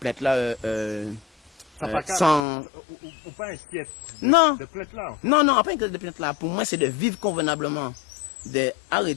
plainte là sans ou pas inquiète non de plainte là non pas inquiète de plainte là pour moi c'est de vivre convenablement de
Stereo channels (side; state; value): right; drops out; at 2.5 s